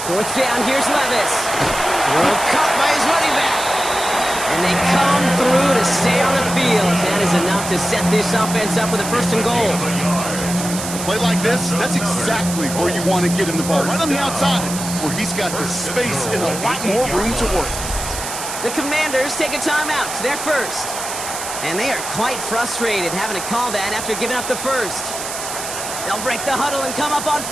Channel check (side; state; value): right; noise; hiss, 7 dB below the sound